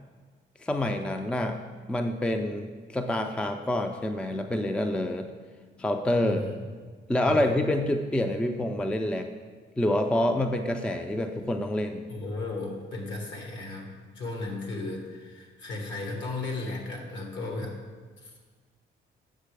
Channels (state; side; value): normal; both; correlation 0.80